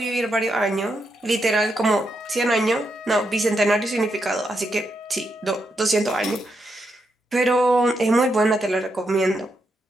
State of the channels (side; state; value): both; normal; correlation 0.82